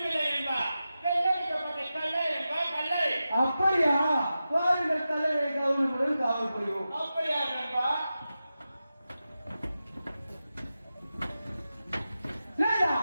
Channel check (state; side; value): inverted; both; correlation -0.92